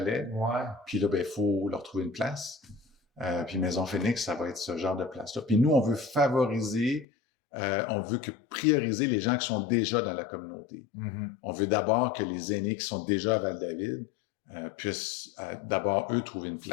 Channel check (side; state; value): right; drops out; at 7.1 s